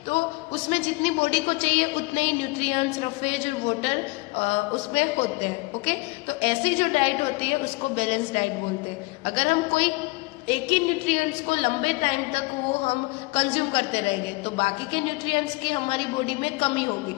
तो उसमें जितनी बॉडी को चाहिए उतने ही न्यूट्रिएंट्स, रफेज और वाटर उसमें होते हैं. ओके, तो ऐसी जो डाइट होती है उसको बैलेंस डाइट बोलते हैं. अगर हम कोई एक ही न्यूट्रिएंट्स को लंबे टाइम तक वो हम कंज्यूम करते रहेंगे तो बाकी के न्यूट्रिएंट्स की हमारी बॉडी में कमी होगी,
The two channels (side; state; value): right; quieter; 25.0 dB